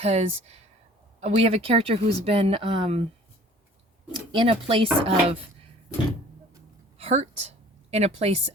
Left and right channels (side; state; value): both; normal; correlation 0.50